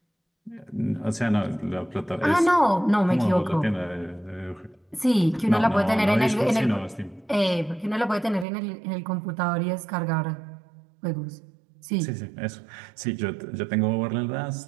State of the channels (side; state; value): left; drops out; at 8.5 s